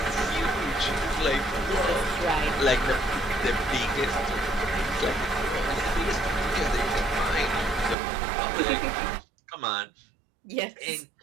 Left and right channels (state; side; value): drops out; left; at 8.0 s